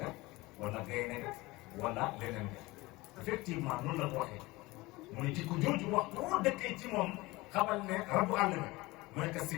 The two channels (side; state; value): right; quieter; 21.3 dB